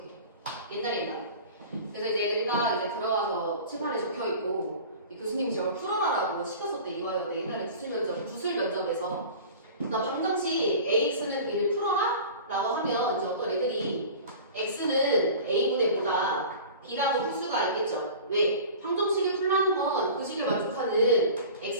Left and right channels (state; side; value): inverted; both; correlation -0.39